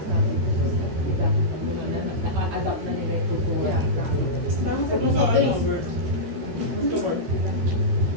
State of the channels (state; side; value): late; left; 13 ms